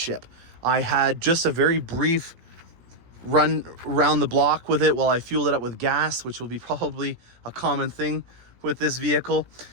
I had just a very brief run around the block with it while I fueled it up with gas, which will be probably a common thing with this vehicle.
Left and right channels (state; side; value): late; left; 17 ms